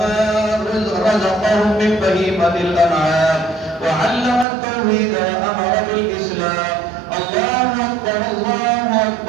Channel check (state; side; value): drops out; left; at 4.5 s